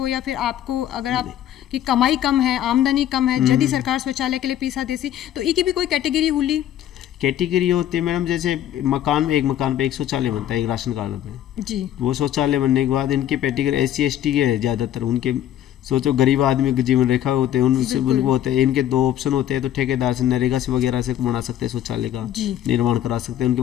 या फिर आपको अगर आप की कमाई कम है, आमदनी कम है, यदि सरकार शौचालय के लिए पीसा देसी तो इसकी भी कोई कैटेगरी हुई? कैटेगरी होती है मैडम, जैसे एक मकान पे एक शौचालय बनता है एक राशन कार्ड पे जी। वो शौचालय बनने के बाद इनके कैटेगरी SC ST के है ज़्यादातर, उनके सोचो गरीब आदमी की जीवन रेखा होते हैं उनसे उनको होते हैं। इनके दो ऑप्शन होते हैं, तो ठेकेदार से नरेगा से वगैरह से बना सकते हैं शौचालय का निर्माण करा सकते हैं। उनके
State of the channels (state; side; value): quieter; right; 11.4 dB